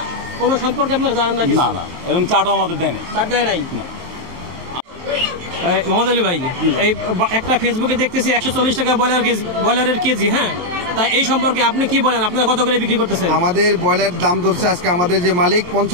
কোনো সম্পর্কে আপনারা জানেন না? না না, এরকম চাটও আমাদের দেয় নাই। চাট দেয় নাই? মোহাম্মদ আলী ভাই, এই একটা ফেসবুকে দেখতেছি 140 টাকা ব্রয়লারের কেজি। হ্যাঁ, তাই এই সম্পর্কে আপনি কি বলেন? আপনারা কত করে বিক্রি করতেছেন? আমাদের ব্রয়লার দাম ধরছে আজকে আমাদের যে মালিক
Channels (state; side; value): late; left; 22 ms